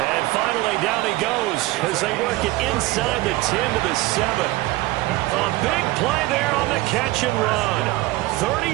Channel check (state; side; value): quieter; left; 19.0 dB